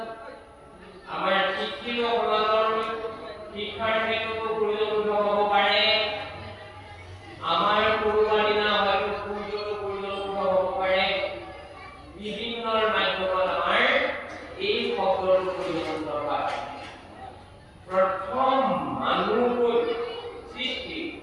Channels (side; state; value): both; identical; correlation 1.00